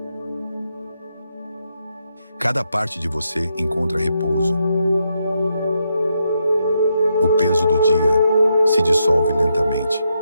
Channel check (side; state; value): both; inverted; correlation -0.81